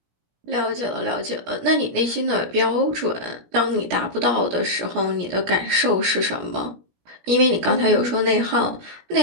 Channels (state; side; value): late; left; 17 ms